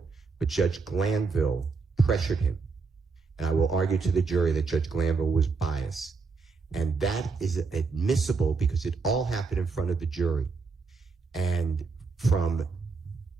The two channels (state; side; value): quieter; left; 4.5 dB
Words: But Judge Glanville pressured him. And I will argue to the jury that Judge Glanville was biased. And that is admissible because it all happened in front of the jury. And from